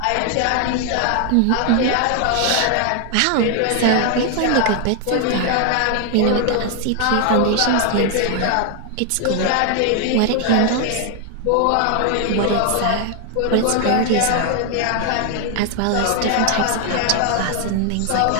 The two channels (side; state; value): both; different; correlation 0.00